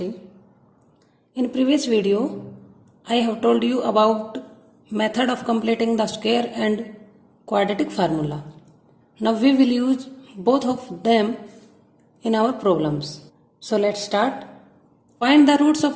In previous video, I have told you about method of completing the square and quadratic formula. Now we will use both of them in our problems. So let's start. Find the roots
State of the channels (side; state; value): both; identical; correlation 1.00